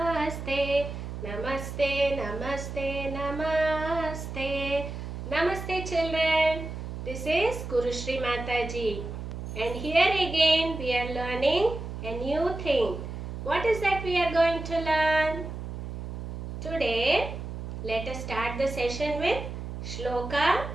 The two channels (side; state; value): right; noise; hum, 7 dB below the sound